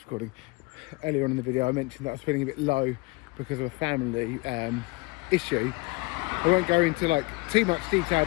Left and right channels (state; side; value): quieter; right; 26.2 dB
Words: recording. Earlier on in the video I mentioned that I was feeling a bit low because of a family issue. I won't go into too much detail,